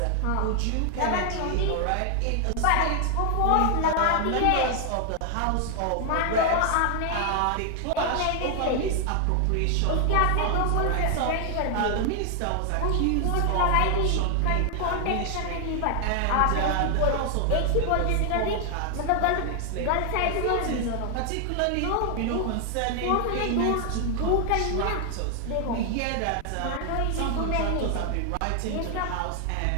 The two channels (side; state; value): both; different; correlation 0.00